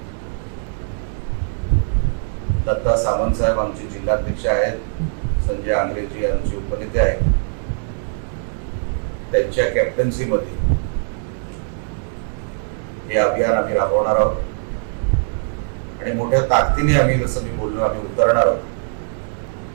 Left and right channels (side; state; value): left; silent; digital silence